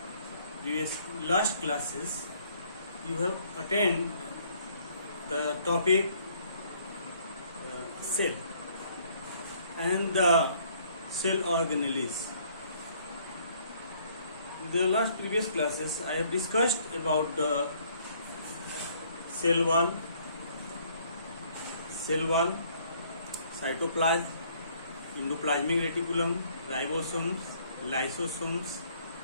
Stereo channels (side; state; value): both; inverted; correlation -0.63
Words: classes you have attended the topic cell and the cell organelles. The last previous classes I have discussed about the cell wall, cytoplasm, endoplasmic reticulum, ribosomes, lysosomes,